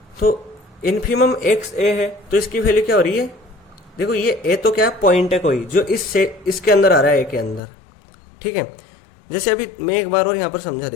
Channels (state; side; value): drops out; right; at 7.6 s